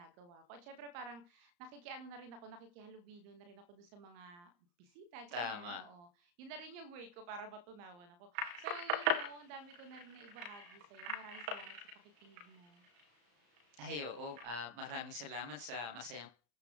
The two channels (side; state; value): left; late; 34 ms